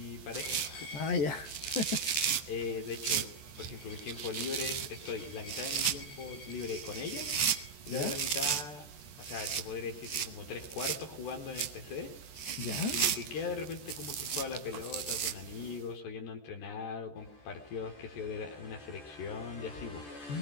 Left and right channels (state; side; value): late; right; 14 ms